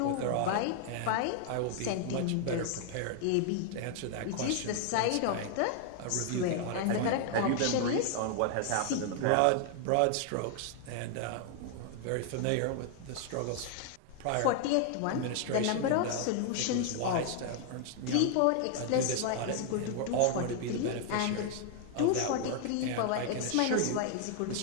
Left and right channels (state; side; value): different; both; correlation 0.00